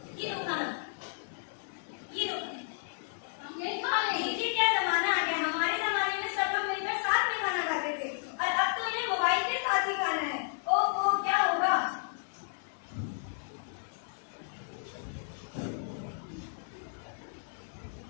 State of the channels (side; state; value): right; silent; digital silence